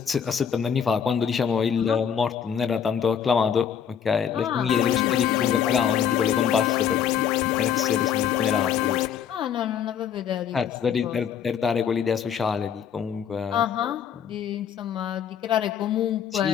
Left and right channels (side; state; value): right; quieter; 8.2 dB